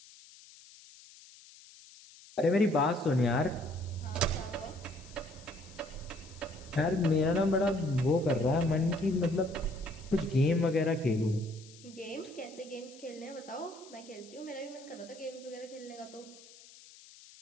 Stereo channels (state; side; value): noise; left; hiss, 21 dB below the sound